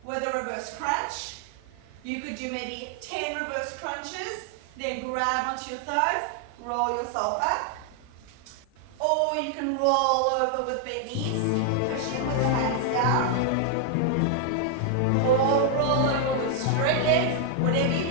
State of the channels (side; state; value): both; different; correlation 0.00